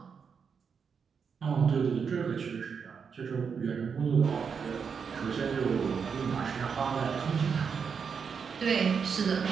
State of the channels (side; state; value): left; quieter; 6.3 dB